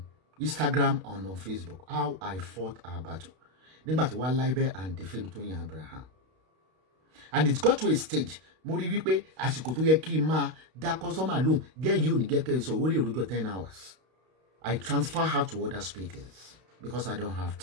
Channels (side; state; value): left; late; 32 ms